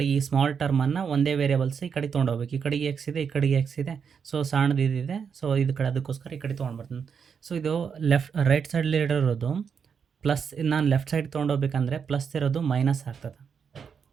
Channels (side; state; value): left; quieter; 6.6 dB